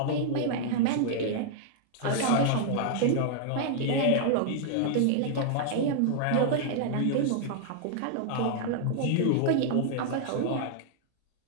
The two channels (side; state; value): both; different; correlation -0.01